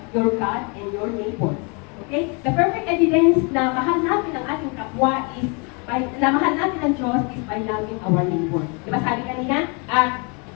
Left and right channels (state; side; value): quieter; right; 33.5 dB